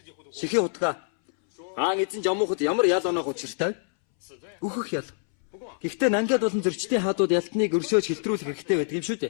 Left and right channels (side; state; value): right; silent; 61 dB below the other